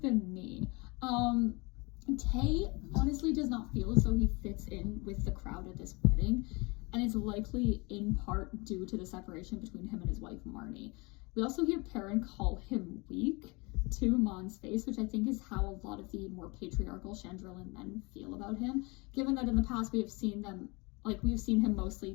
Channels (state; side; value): quieter; right; 27.2 dB